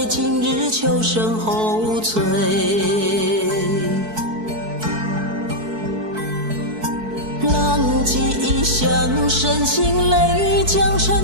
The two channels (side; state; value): left; late; 4.6 ms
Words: 今日秋声后催。浪迹异乡，深情泪，将承